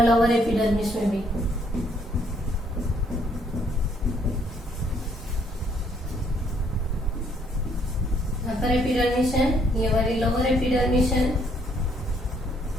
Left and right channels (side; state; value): both; normal; correlation 0.68